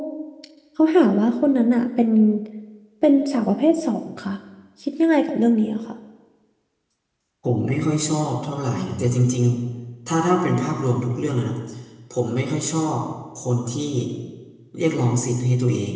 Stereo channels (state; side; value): identical; both; correlation 1.00